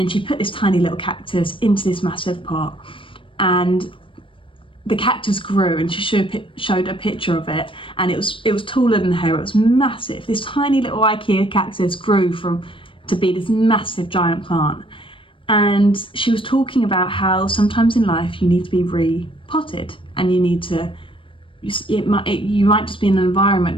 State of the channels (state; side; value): late; right; 0.25 ms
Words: she put this tiny little cactus into this massive pot, and the cactus grew, and she showed a picture of it, and it was taller than her. It was massive. This tiny little IKEA cactus grew to be this massive giant plant. And she was talking about how sometimes in life you need to be repotted, and you need to, you might just be in an environment